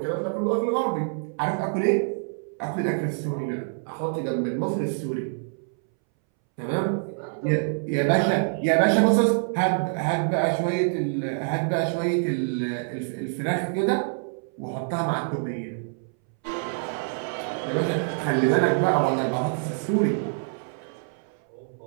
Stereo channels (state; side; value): silent; left; 61 dB below the other